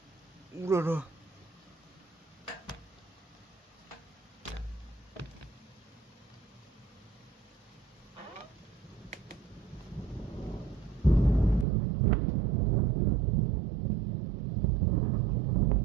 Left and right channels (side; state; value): left; drops out; at 11.7 s